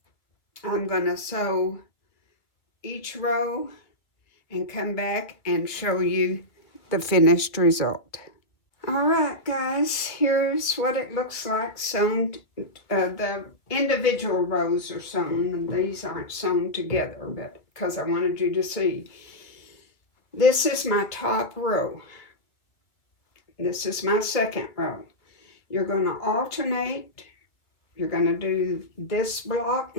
I'm going to sew each row and come back and show you the finished result. All right, guys, here's what it looks like sewn. The individual rows are sewn, and these aren't sewn together, but because I wanted you to see. This is my top row. This is my second row. You're going to alternate. You're going to do this block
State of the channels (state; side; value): late; right; 2.4 ms